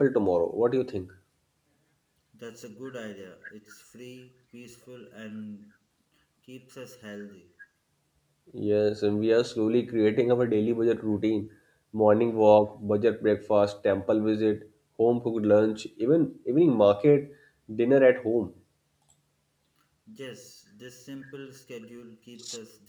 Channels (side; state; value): both; identical; correlation 1.00